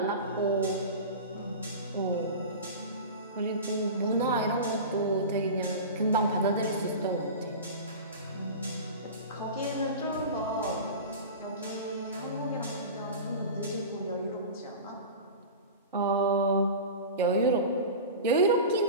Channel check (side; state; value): both; inverted; correlation -0.31